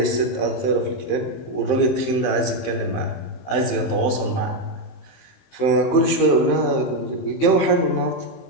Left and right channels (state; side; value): late; right; 15 ms